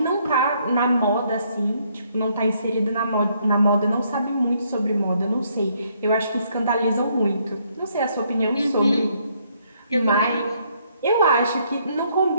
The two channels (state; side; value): inverted; both; correlation -0.70